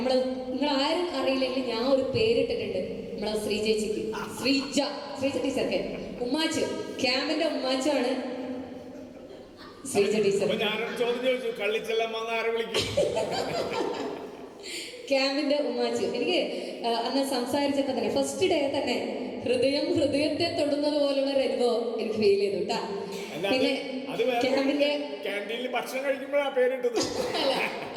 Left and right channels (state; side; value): identical; both; correlation 1.00